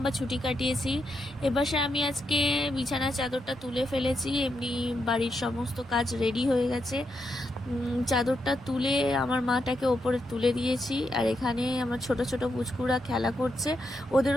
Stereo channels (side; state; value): both; normal; correlation 0.83